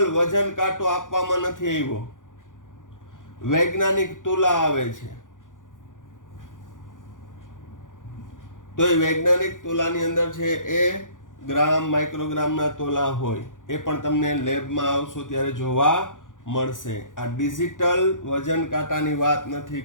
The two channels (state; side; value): late; right; 0.88 ms